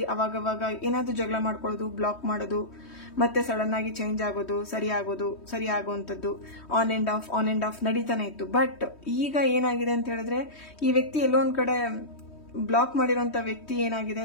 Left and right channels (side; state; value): right; late; 3.2 ms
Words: ಅವಾಗವಾಗ ಏನಾದ್ರೂ ಜಗಳ ಮಾಡ್ಕೊಳ್ಳೋದು, ಬ್ಲಾಕ್ ಮಾಡೋದು, ಮತ್ತೆ ಸಡನ್ ಆಗಿ ಚೇಂಜ್ ಆಗೋದು, ಸರಿ ಆಗುವಂತದ್ದು, ಆನ್ ಅಂಡ್ ಆಫ್ ನಡೀತಾನೆ ಇತ್ತು. ಬಟ್ ಈಗ ಏನಾಗಿದೆ ಅಂತ ಹೇಳಿದ್ರೆ, ಈ ವ್ಯಕ್ತಿ ಎಲ್ಲೋ ಒಂದ್ ಕಡೆ ಬ್ಲಾಕ್ ಮಾಡಿರುವಂತ ವ್ಯಕ್ತಿ ಏನಾಗಿದೆ,